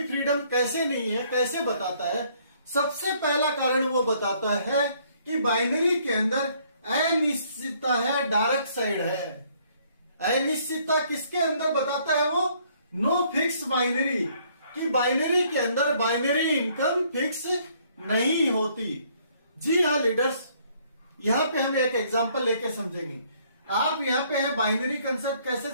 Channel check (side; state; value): both; inverted; correlation -0.64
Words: फ्रीडम कैसे नहीं है, कैसे बताता है। सबसे पहला कारण वो बताता है कि बाइनरी के अंदर अनिश्चितता है, डार्क साइड है। अनिश्चितता किसके अंदर बताता है वो? नो फिक्स बाइनरी, कि बाइनरी के अंदर बाइनरी इनकम फिक्स नहीं होती। जी हाँ लीडर्स, यहाँ पे हम एक एग्जांपल लेके समझेंगे। आप यहाँ पे है बाइनरी कंसेप्ट कैसे